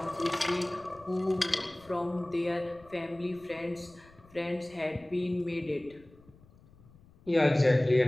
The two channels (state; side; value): noise; left; rumble, 26 dB below the sound